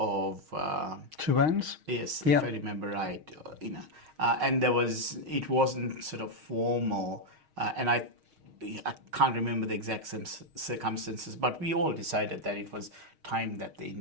Two hands? yes, Yeah. if I remember right, and it wasn't sort of formal, and I can't remember the exact circumstances, but we all decided that it was time that the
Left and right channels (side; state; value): left; late; 6.4 ms